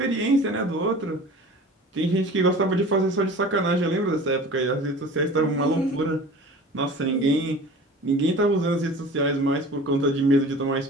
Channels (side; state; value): both; normal; correlation 0.40